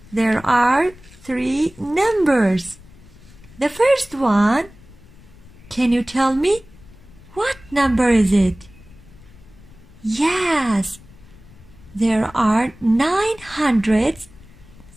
There are 3 numbers. The first one, can you tell me what number is it? Yes, there are 9 hundreds,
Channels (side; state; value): left; noise; rumble, 23 dB below the sound